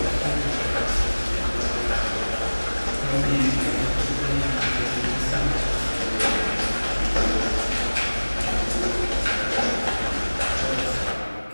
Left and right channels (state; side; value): inverted; both; correlation -1.00